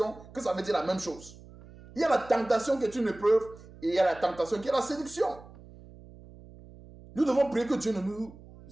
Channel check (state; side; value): noise; right; hum, 20 dB below the sound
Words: que ça veut dire la même chose. Il y a la tentation qui est une épreuve et il y a la tentation qui est la séduction. Nous devons prier que Dieu ne nous